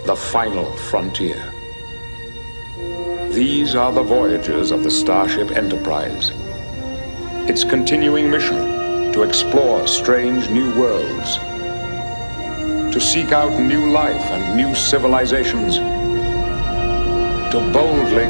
the final frontier. These are the voyages of the Starship Enterprise. Its continuing mission to explore strange new worlds, to seek out new life and new civilizations, to boldly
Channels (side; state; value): both; inverted; correlation -1.00